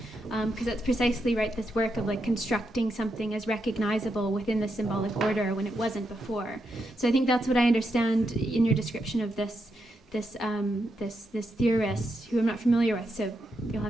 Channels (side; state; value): both; normal; correlation 0.83